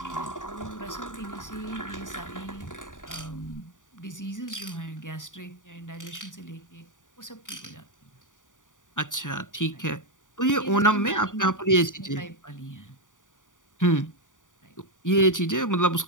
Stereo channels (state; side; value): late; right; 0.87 ms